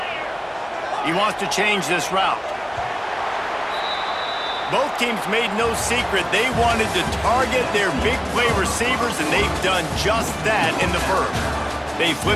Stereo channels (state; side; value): identical; both; correlation 1.00